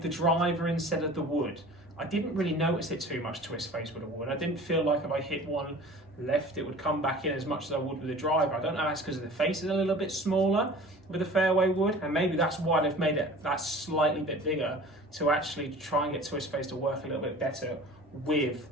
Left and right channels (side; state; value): both; normal; correlation 0.43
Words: the driver instead of the wood. I didn't really notice it too much Twist Face with a wood. I didn't feel like if I hit one left, it would come back in as much as I would with the driver. I don't know if that's because the face is a little bit smaller with the fairway wood, and maybe that's why they've made it that slightly bit bigger to actually try and get Twist Face to work a little bit better with